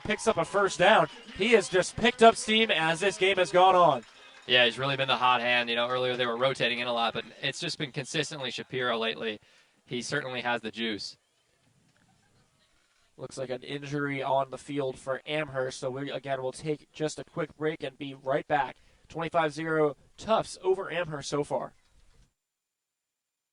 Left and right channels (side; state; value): both; identical; correlation 1.00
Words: picks up a first down. He has just picked up steam as this game has gone on. Yeah, he's really been the hot hand. Earlier they were rotating in a lot, but it's just been consistently Shapiro lately. He certainly has the juice. Looks like an injury on the field for Amherst. So we, again, will take just a quick break and be right back. 25-0 Tufts over Amherst so far.